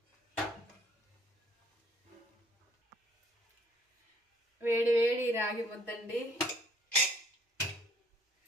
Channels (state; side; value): normal; both; correlation 0.61